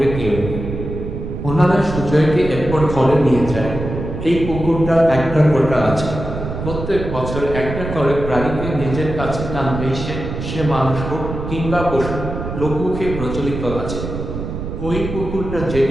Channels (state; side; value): noise; right; rumble, 6 dB below the sound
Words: কেউ নেই। ওনারা সুজয়কে এরপর ঘরে নিয়ে যায়। এই পুকুরটার একটা কোটা আছে। প্রত্যেক বছর একটা করে প্রাণীকে নিজের কাছে টানবে সে মানুষ হোক কিংবা পশু। লোকমুখে প্রচলিত আছে ওই পুকুরটা